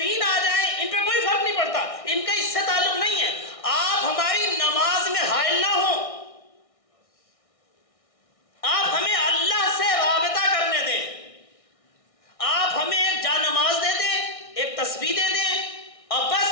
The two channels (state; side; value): late; right; 1.6 ms